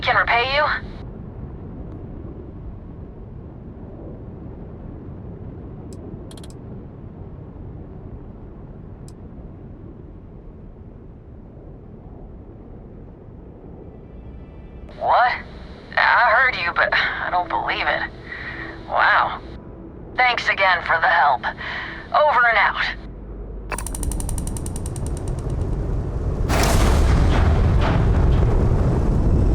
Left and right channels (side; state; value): both; identical; correlation 1.00